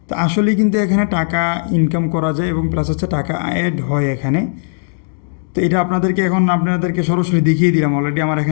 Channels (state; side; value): silent; right; digital silence